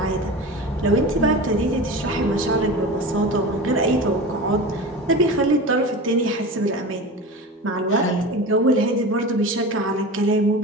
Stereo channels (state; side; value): normal; both; correlation 0.31